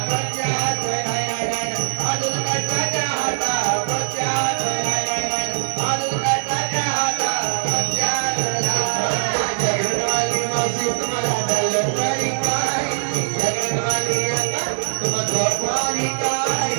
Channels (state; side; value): silent; left; digital silence